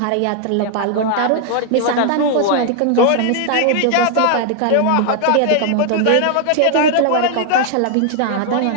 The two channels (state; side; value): different; both; correlation 0.00